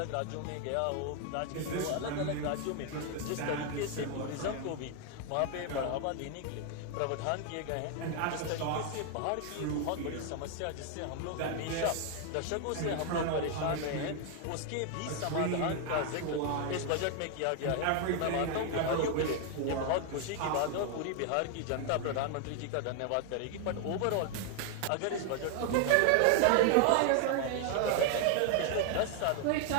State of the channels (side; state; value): both; different; correlation 0.00